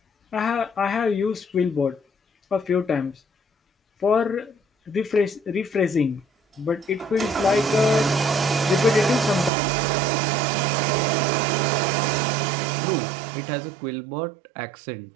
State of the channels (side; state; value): left; drops out; at 9.5 s